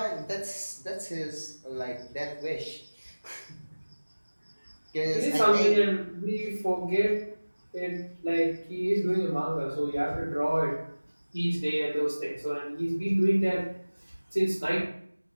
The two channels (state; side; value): inverted; both; correlation -1.00